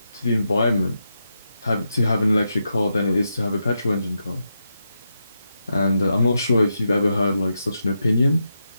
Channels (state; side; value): inverted; both; correlation -0.86